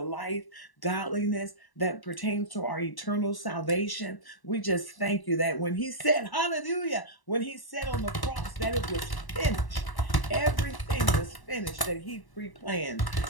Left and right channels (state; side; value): late; right; 1.0 ms